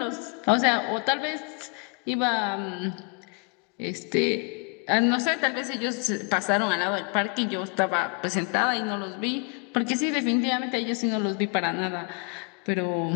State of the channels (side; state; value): right; quieter; 36.3 dB